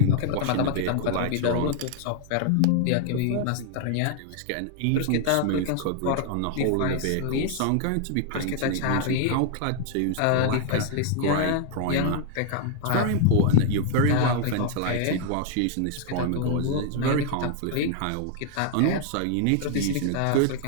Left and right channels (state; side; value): different; both; correlation 0.00